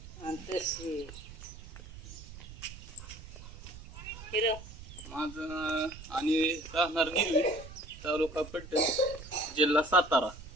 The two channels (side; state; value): right; noise; rumble, 14 dB below the sound